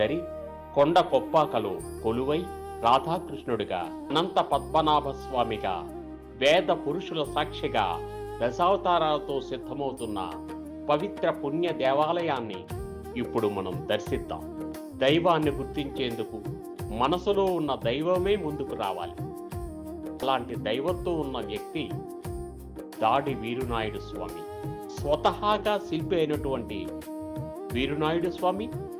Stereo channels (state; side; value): identical; both; correlation 1.00